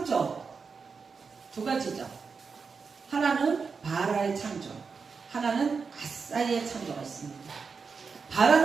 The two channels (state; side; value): quieter; left; 5.2 dB